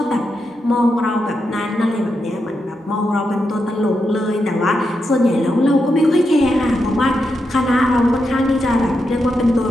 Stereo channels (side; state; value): both; normal; correlation 0.85